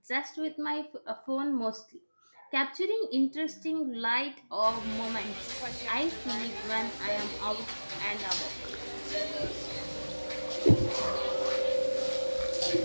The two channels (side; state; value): both; inverted; correlation -1.00